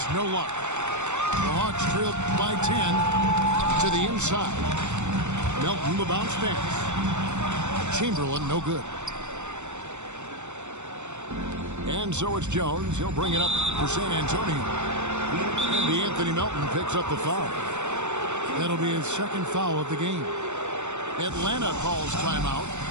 no luck. The Hawks trailed by 10 to the inside. Melton, the bounce pass. Chamberlain, no good. And so it's Jones. He'll bring it up for San Antonio. And Anthony Melton picks up the foul. That'll be his 2nd foul of the game. Atlanta calls timeout.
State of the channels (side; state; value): left; late; 0.84 ms